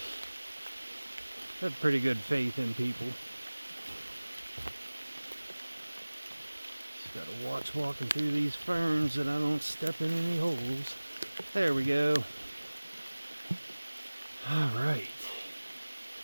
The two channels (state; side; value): inverted; both; correlation -1.00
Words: I have pretty good faith in people. Just gotta watch walking through these ferns that I don't step in any holes. There we go. Alright.